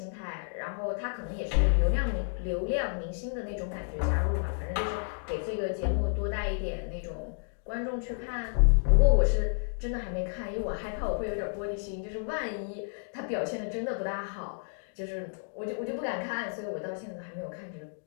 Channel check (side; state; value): right; silent; digital silence